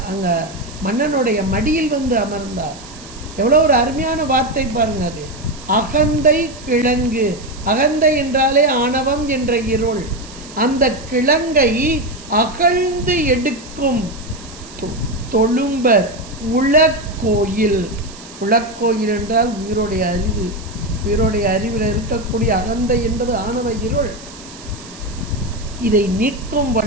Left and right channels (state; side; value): noise; right; hiss, 18 dB below the sound